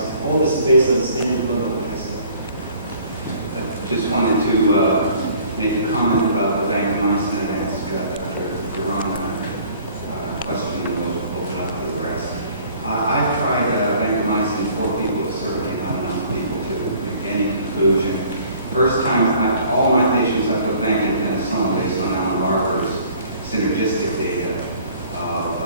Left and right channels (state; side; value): inverted; both; correlation -0.54